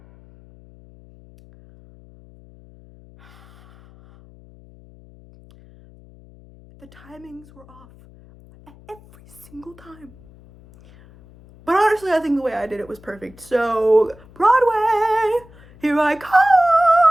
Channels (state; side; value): noise; left; hum, 24 dB below the sound